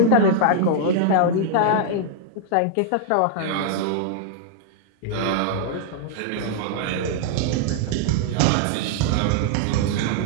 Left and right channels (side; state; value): both; different; correlation -0.01